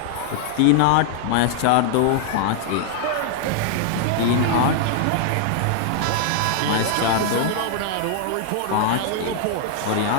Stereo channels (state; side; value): different; both; correlation -0.01